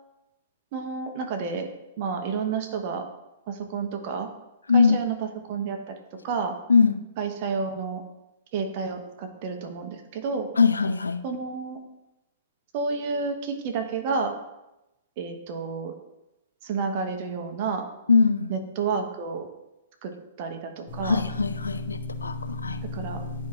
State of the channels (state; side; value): inverted; both; correlation -0.65